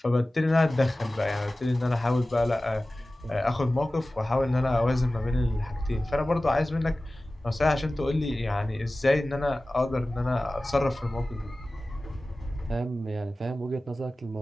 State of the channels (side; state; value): both; normal; correlation 0.96